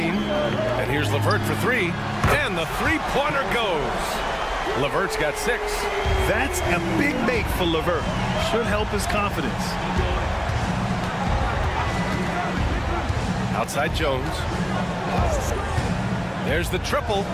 And here's LeVert for 3. And the three-pointer goes. LeVert's got 6. That's a big make for LeVert. Should help his confidence. Outside Jones. There's the triple.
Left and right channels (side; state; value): both; identical; correlation 1.00